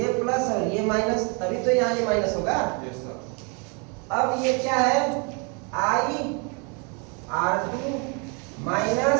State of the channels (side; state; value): left; quieter; 34.1 dB